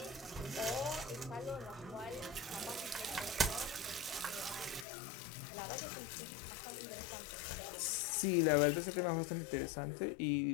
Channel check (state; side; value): drops out; right; at 4.9 s